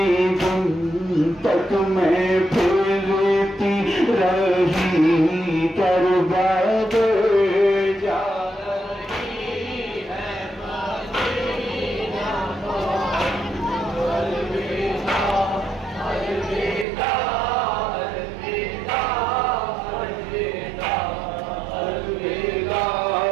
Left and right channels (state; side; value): drops out; left; at 16.9 s